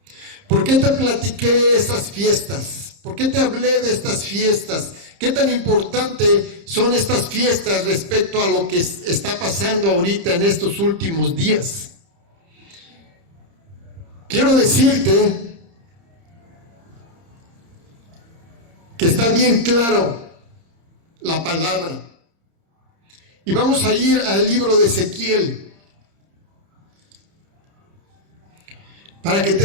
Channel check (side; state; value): left; late; 30 ms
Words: ¿Por qué te platiqué esas fiestas? ¿Por qué te hablé de estas fiestas? ¿Qué tan importante son estas fiestas respecto a lo que está pasando ahorita en estos últimos días? Quiero decirte que está bien claro la palabra. Y vamos a ir al libro de Ezequiel para que